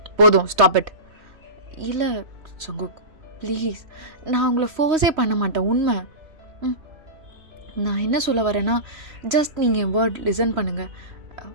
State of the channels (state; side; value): late; left; 3.1 ms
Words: போதும் ஸ்டாப் இட். இல்லை ஜங்குக் ப்ளீஸ், நான் உங்களை ஃபோர்ஸே பண்ண மாட்டேன், உண்மை. நான் என்ன சொல்ல வரேன்னா, ஜஸ்ட் நீங்கள் என் வேர்ட் லிசன் பண்ணுங்கள்.